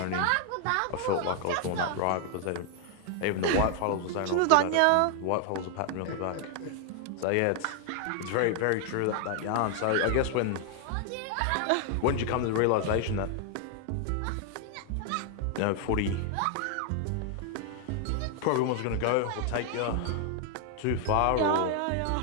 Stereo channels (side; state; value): both; different; correlation 0.00